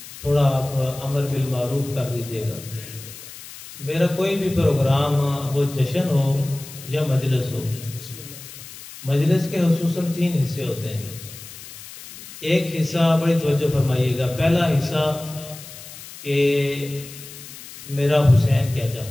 تھوڑا آپ امر بالمعروف کر دیجئے گا۔ میرا کوئی بھی پروگرام، وہ جشن ہو یا مجلس ہو، مجلس کے خصوصاً 3 حصے ہوتے ہیں۔ ایک حصہ بڑی توجہ فرمائیے گا، پہلا حصہ کہ میرا حسین کیا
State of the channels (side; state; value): left; noise; hiss, 15 dB below the sound